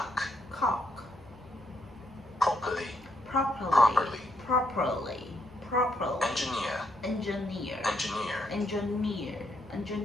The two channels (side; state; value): both; normal; correlation 0.76